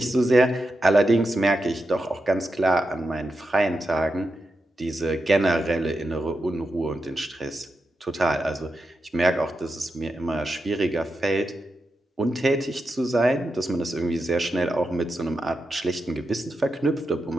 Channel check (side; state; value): both; normal; correlation 0.88